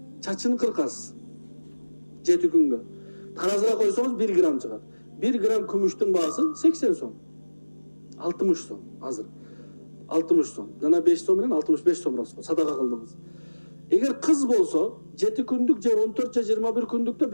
Çaçını kırkasiz. 7 күнгө. Tarazıga koysanız 1 gram çıkar. 1 gram kümüştün bağısı 80 so'm. 60 so'm hazır. 60 so'm. Jana 5 so'm bilen 65 so'm rasxot. Sadaka kıldınız. Eğer kız bolsa 7 kündük je 14 je 21 kündükte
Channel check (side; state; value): both; inverted; correlation -1.00